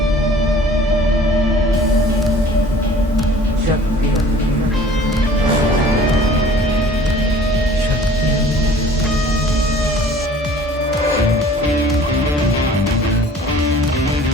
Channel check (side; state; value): both; normal; correlation 0.49